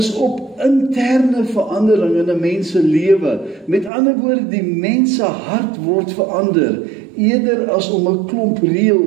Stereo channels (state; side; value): drops out; left; at 3.9 s